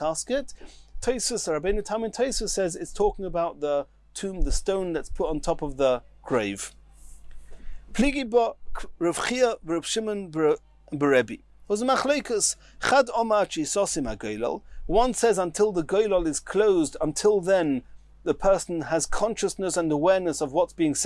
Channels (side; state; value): both; identical; correlation 1.00